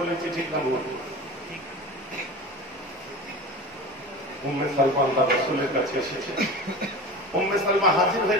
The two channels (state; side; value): noise; right; rumble, 30 dB below the sound